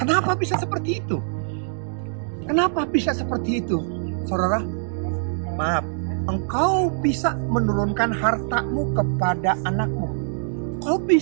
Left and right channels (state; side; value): silent; left; digital silence